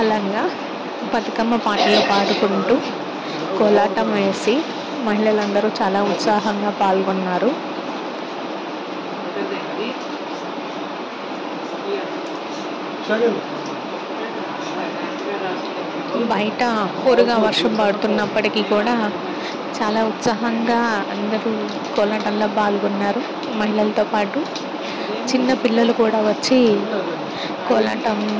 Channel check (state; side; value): identical; both; correlation 1.00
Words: బతుకమ్మ పాటలు పాడుకుంటూ కోలాటం వేసి మహిళలందరూ చాలా ఉత్సాహంగా పాల్గొన్నారు. బయట హోరుగా వర్షం పడుతున్నప్పటికీ కూడా చాలా ఉత్సాహంగా అందరూ కోలాటంలో పాల్గొన్నారు. మహిళలతో పాటు చిన్న పిల్లలు కూడా వచ్చి